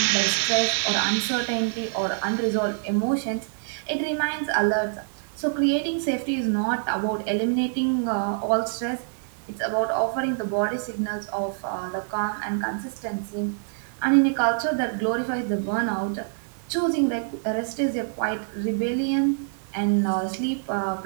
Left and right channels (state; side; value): silent; left; digital silence